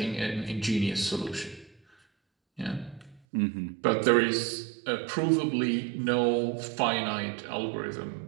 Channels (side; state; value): left; drops out; at 3.2 s